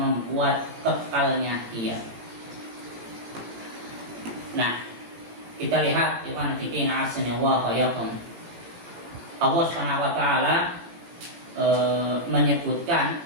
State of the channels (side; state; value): left; late; 18 ms